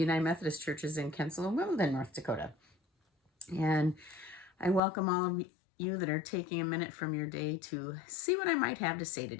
Methodist Churches in Kensal and Wimbledon, North Dakota. And I welcome all of you that are taking a minute from your day to see what I might have to say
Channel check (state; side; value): drops out; right; at 4.8 s